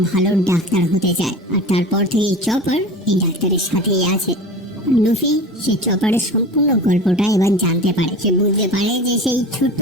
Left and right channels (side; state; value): both; normal; correlation 0.35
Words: ভালো ডাক্তার হতে চায়। আর তারপর থেকে চপার এই ডাক্তারের সাথেই আছে। লুফি সে চপারের সম্পূর্ণ গল্পটা এবার জানতে পারে। সে বুঝতে পারে যে সেই ছোট্ট